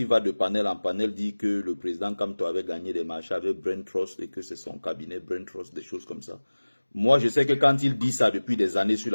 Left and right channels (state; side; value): inverted; both; correlation -1.00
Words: va de panel en panel dit que le président Kamto avait gagné des marchés avec Brain Trust et que c'est son cabinet Brain Trust, des choses comme ça. Moi, je sais que quand il dit ça depuis des années sur